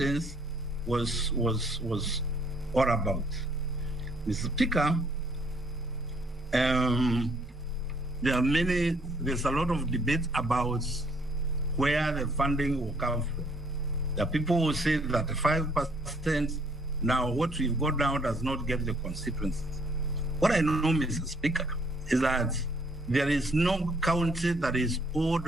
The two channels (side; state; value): both; normal; correlation 0.65